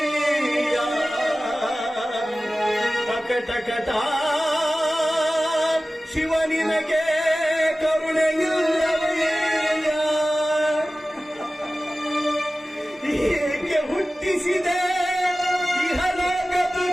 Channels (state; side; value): normal; both; correlation 0.96